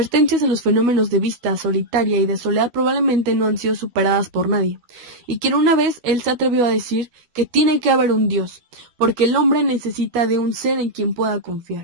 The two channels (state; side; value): late; left; 12 ms